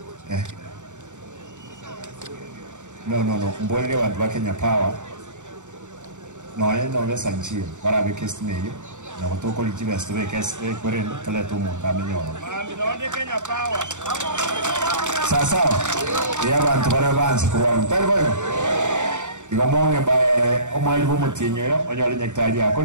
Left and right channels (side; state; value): left; late; 0.85 ms